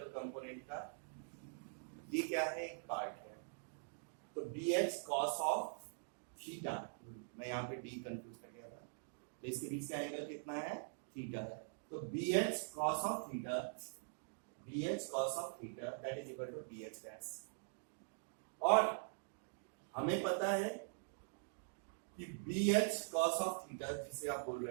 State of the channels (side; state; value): left; silent; digital silence